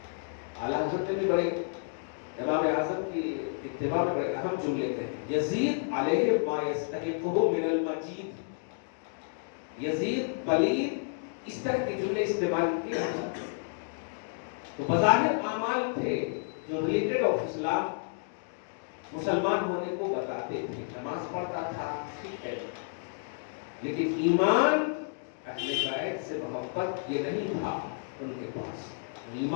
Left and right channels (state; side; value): silent; right; digital silence